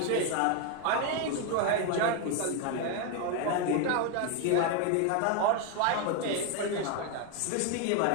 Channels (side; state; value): both; different; correlation 0.01